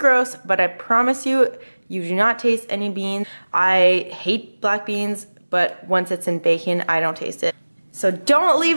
but I promise you, you do not taste any beans. I hate black beans, but once it's in bacon, I don't taste it. So don't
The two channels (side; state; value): both; inverted; correlation -1.00